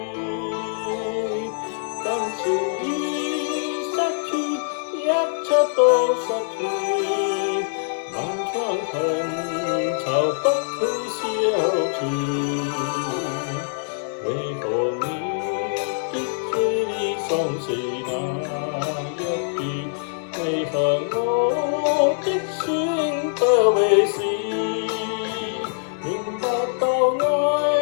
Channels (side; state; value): right; silent; digital silence